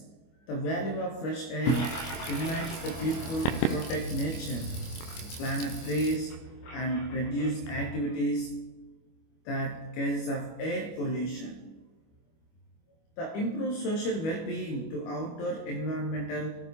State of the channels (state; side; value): late; right; 25 ms